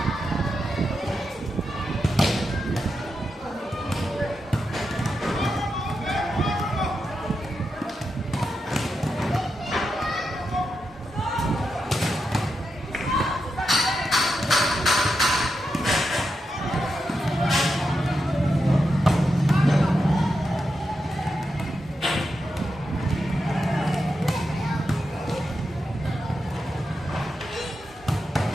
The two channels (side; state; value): both; normal; correlation 0.87